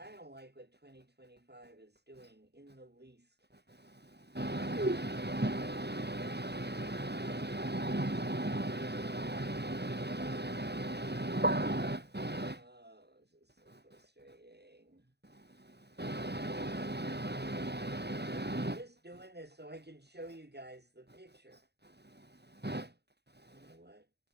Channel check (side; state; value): left; late; 0.48 ms